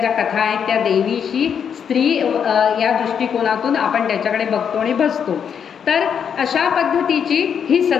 कथा आहेत त्या देवीशी स्त्री या दृष्टिकोनातून आपण त्याच्याकडे बघतो आणि बसतो. तर अशा पद्धतीची ही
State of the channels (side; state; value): right; quieter; 7.6 dB